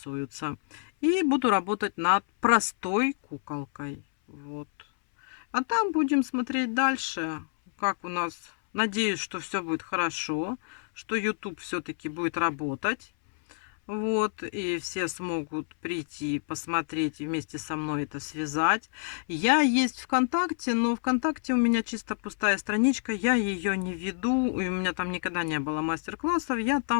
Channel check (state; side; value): silent; right; 59 dB below the other